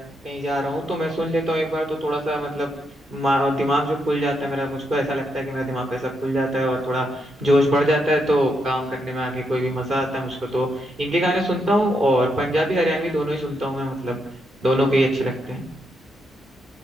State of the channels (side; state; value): both; normal; correlation 0.80